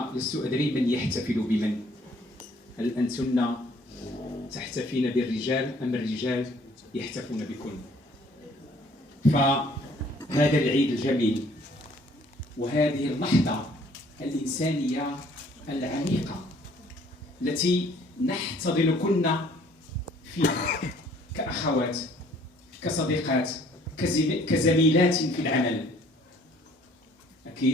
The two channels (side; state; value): both; normal; correlation 0.59